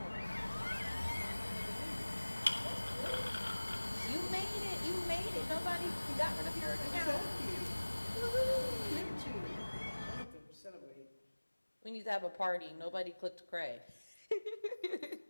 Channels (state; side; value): inverted; both; correlation -1.00